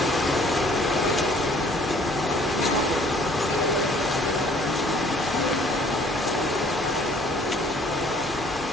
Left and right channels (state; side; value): normal; both; correlation 0.57